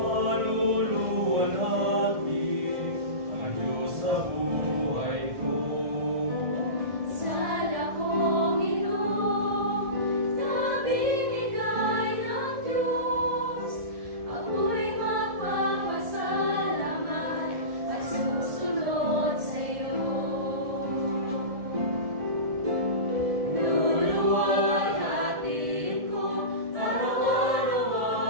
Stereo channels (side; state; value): left; late; 1.6 ms